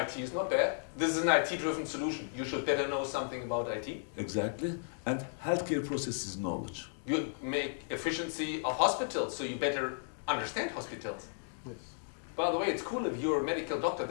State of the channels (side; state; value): right; silent; digital silence